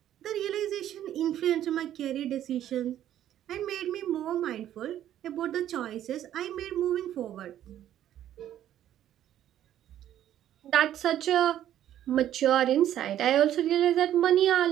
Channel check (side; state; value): left; quieter; 11.6 dB